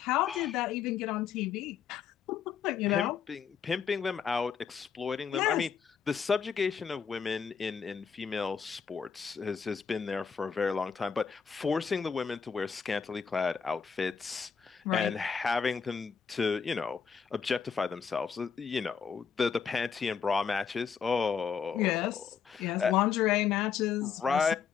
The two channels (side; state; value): right; quieter; 6.8 dB